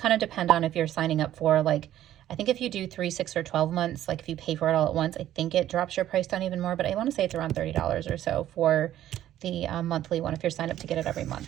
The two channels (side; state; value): left; quieter; 12.5 dB